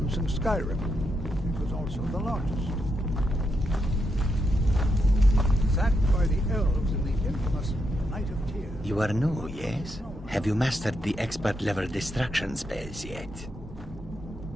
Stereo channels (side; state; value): both; normal; correlation 0.82